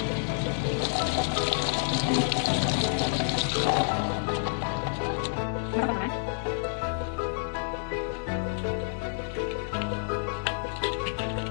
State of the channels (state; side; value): silent; right; digital silence